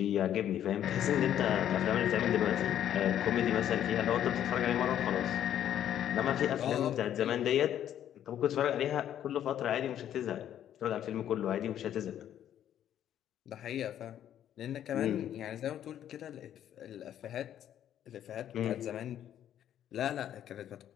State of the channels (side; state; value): right; quieter; 10.7 dB